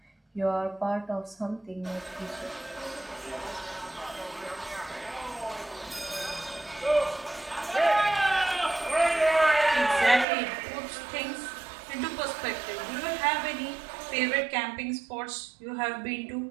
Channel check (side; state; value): left; drops out; at 10.2 s